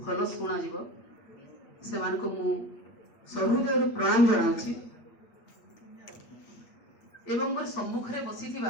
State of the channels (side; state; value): right; late; 8.6 ms